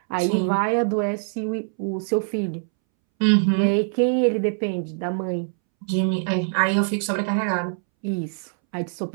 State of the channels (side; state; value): left; silent; 63 dB below the other